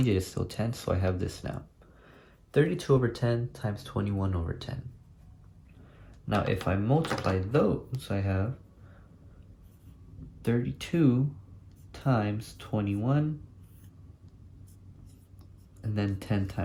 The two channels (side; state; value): both; identical; correlation 1.00